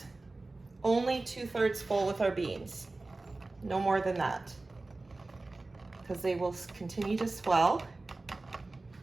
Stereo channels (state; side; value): quieter; left; 3.2 dB